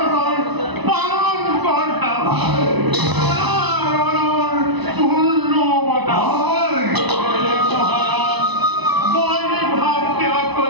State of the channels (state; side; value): late; left; 1.0 ms